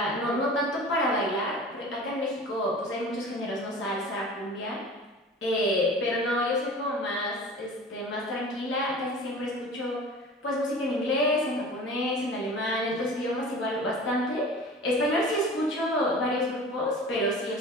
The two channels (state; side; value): normal; both; correlation 0.39